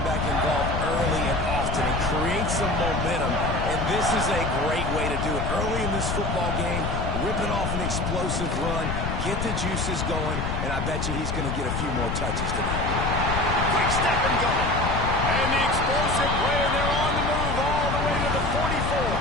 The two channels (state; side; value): noise; left; rumble, 2 dB below the sound